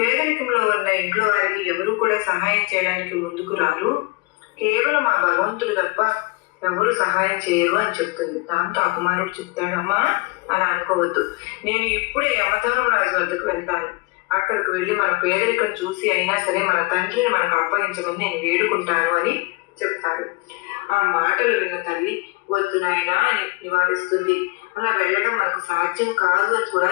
ఉన్న ఇంట్లో వారికి ఎవరు కూడా సహాయం చేయడానికి ముందుకు రారు, కేవలం ఆ భగవంతుడు తప్ప ఎవరు సహాయం చేయరు అని చెప్తుంది. దాంతో ఆ కుమారుడు చెప్తాడమ్మా, అలా అనుకోవద్దు, నేను ఇప్పుడే యమధర్మరాజు వద్దకు వెళ్తాను. అక్కడికి వెళ్ళి మన పేదరికం చూసి అయినా సరే మన తండ్రిని మనకు అప్పగించమని నేను వేడుకుంటాను అని చెప్తాడు. ఆ మాటలు విన్న తల్లి వద్దు నాయనా అని నివారిస్తుంది. అలా వెళ్ళడం మనకు సాధ్యం కాదు అని కూడా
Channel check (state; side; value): quieter; right; 24.6 dB